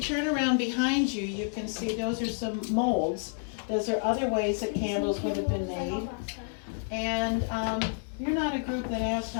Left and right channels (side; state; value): right; silent; 58 dB below the other